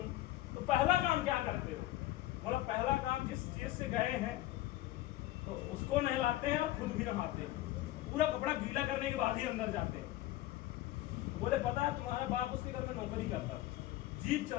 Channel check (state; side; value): quieter; right; 15.5 dB